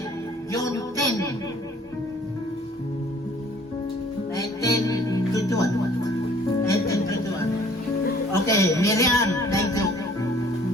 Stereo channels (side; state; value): both; normal; correlation 0.55